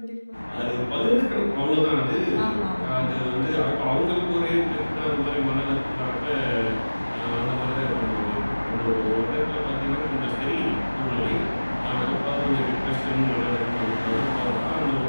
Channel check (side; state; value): both; inverted; correlation -1.00